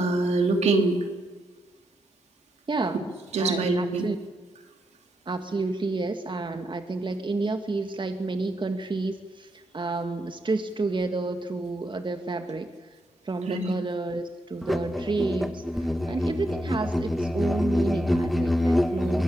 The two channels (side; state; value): both; normal; correlation 0.82